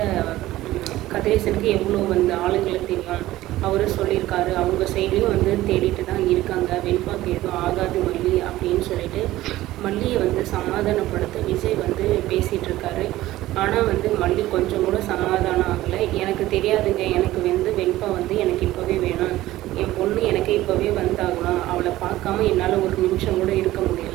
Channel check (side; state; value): left; quieter; 16.1 dB